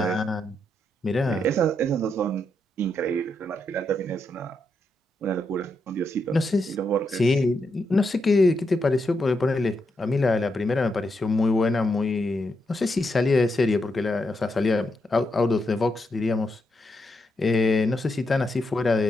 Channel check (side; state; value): both; normal; correlation 0.82